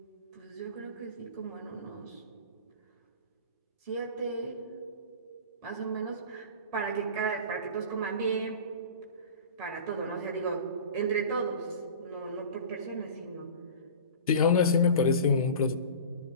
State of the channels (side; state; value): both; inverted; correlation -0.36